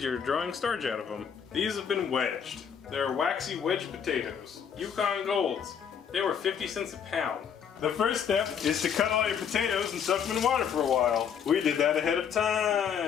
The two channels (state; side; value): quieter; right; 7.7 dB